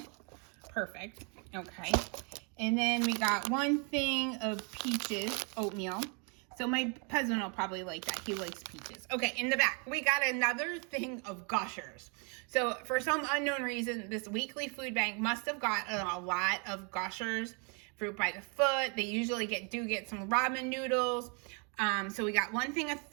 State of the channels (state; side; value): quieter; left; 36.2 dB